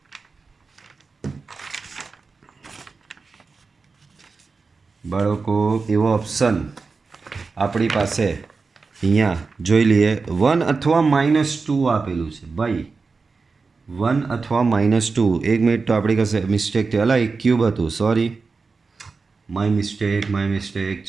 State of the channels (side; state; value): left; quieter; 4.4 dB